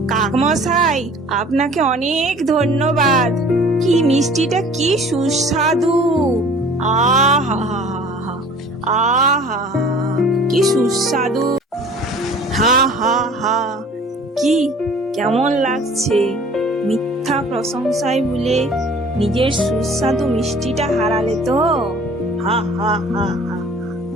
কাকমশাই, আপনাকে অনেক ধন্যবাদ। কি মিষ্টিটা কি সুস্বাদু! আহা আহা, কি সুস্বাদু! হা হা হা, কি কেমন লাগছে? মিথ্যা প্রশংসায় ভুলে নিজের সুস্বাদু মিষ্টিটা হারালে তো? হা হা হা হা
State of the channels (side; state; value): both; normal; correlation 0.48